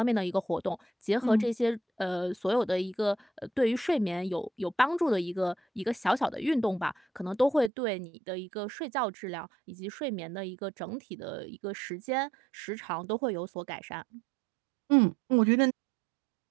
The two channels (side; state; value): left; drops out; at 7.7 s